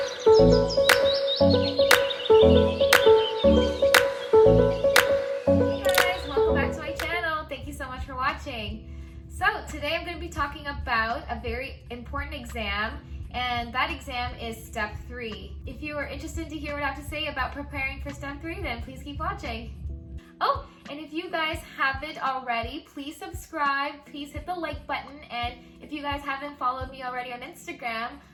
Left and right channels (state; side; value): identical; both; correlation 1.00